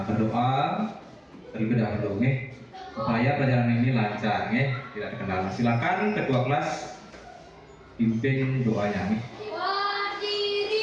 berdoa terlebih dahulu, supaya pelajaran ini lancar, tidak terkendala. Silakan ketua kelas pimpin doanya.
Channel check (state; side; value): identical; both; correlation 1.00